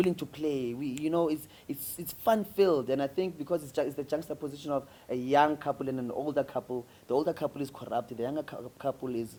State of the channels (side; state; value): both; identical; correlation 1.00